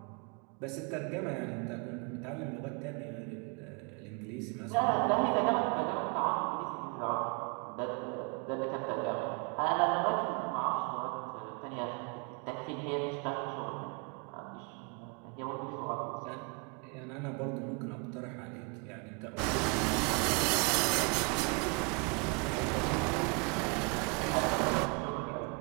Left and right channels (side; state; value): left; quieter; 33.5 dB